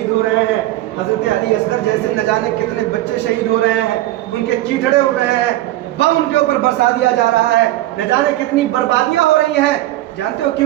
ہو رہے ہیں، حضرت علی اصغر جیسے نہ جانے کتنے بچے شہید ہو رہے ہیں، ان کے چیٹڑے اڑ رہے ہیں، بم ان کے اوپر برسا دیا جا رہا ہے، نہ جانے کتنی بربادیاں ہو رہی ہیں۔ جانتے ہو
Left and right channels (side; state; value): left; quieter; 15.9 dB